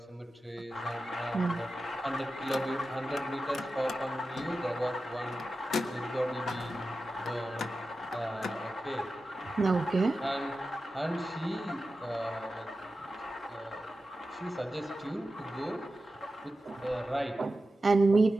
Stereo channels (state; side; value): normal; both; correlation 0.92